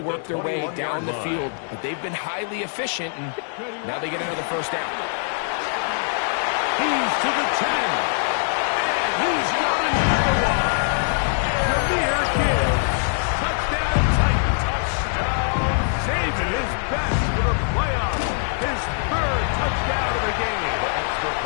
their way down the field. But they've been highly efficient, and now they get another first down. He's to the 10. And he's got another one. Jameer Gibbs. Touchdown Titans. Touchdown. Saving his best for the playoffs. His third touchdown of the game. The extra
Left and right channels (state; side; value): silent; right; digital silence